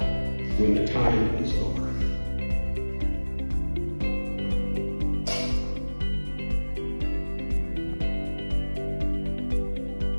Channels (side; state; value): both; inverted; correlation -1.00